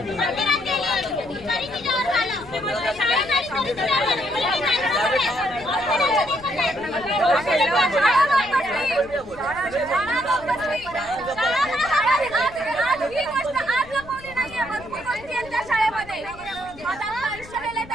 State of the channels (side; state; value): left; noise; rumble, 19 dB below the sound